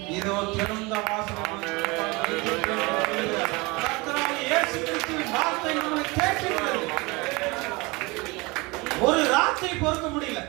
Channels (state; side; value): quieter; left; 25.1 dB